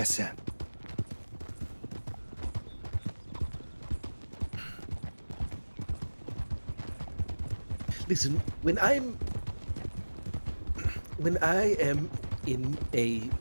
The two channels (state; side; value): inverted; both; correlation -1.00